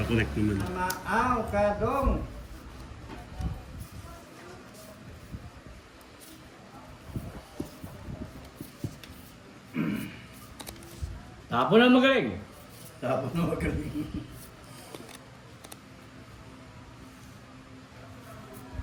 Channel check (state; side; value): identical; both; correlation 1.00